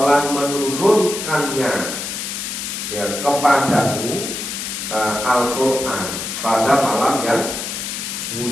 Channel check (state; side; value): noise; left; hiss, 5 dB below the sound